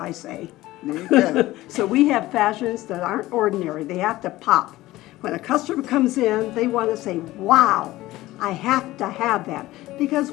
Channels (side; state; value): right; quieter; 17.2 dB